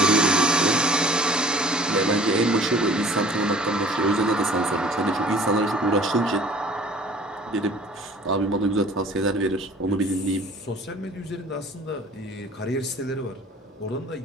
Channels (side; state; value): both; normal; correlation 0.50